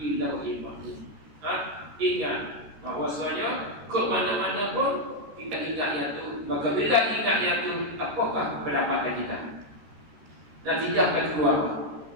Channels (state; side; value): late; left; 13 ms